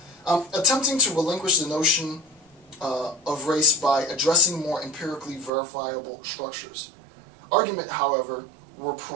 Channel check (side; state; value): left; drops out; at 5.5 s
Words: Attempting to relinquish the notion of race by addressing more empirically verifiable structures. Argument, however, were